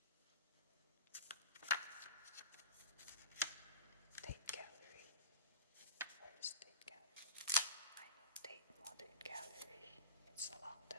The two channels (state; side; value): inverted; both; correlation -0.31